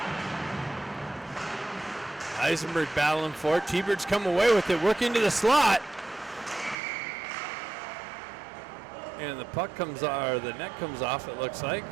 Eisenberg battling for it. T-Birds come away with it. Work into the slot. And the puck comes or the net comes off, it looks like.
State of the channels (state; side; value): drops out; left; at 6.8 s